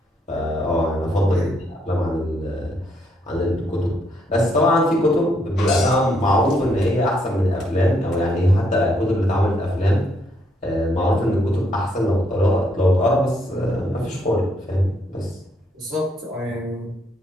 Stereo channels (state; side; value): normal; both; correlation 0.73